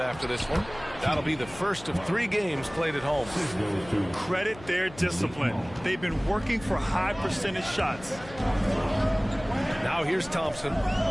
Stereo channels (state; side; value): noise; left; hum, 18 dB below the sound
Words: after this one. That'll be the first of 3 games played at home. Credit their discipline. They've been working for high percentage shots. Now here's Thompson.